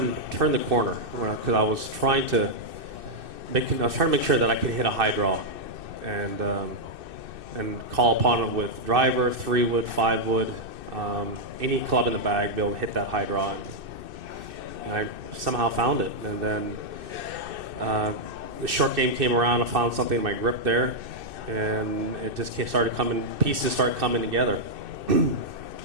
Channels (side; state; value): left; late; 2.6 ms